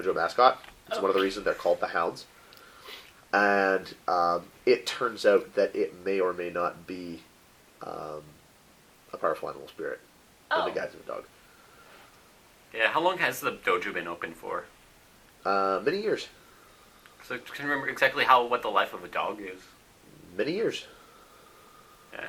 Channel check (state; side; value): identical; both; correlation 1.00